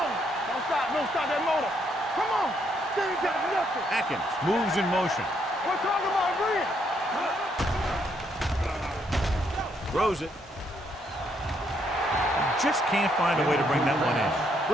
Don't stop that motor. Come on. They ain't got nothing. Atkins moves in motion. We're talking about Green. Throws it. Just can't find a way to bring that one in.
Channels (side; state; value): both; normal; correlation 0.73